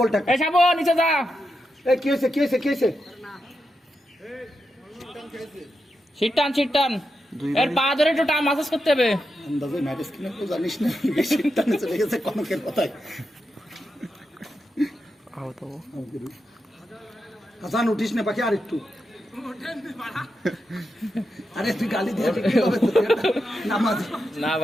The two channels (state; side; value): normal; both; correlation 0.87